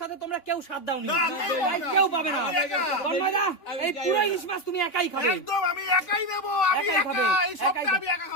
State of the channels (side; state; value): right; late; 3.4 ms